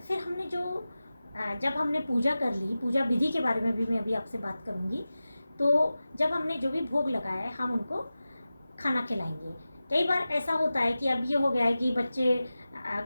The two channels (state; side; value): inverted; both; correlation -0.95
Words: फिर हमने जब हमने पूजा कर ली, पूजा विधि के बारे में भी मैं अभी आपसे बात करूँगी। तो जब हमने जो भी भोग लगाया है हम उनको खाना खिलाएंगे। कई बार ऐसा होता है कि अब ये हो गया है कि बच्चे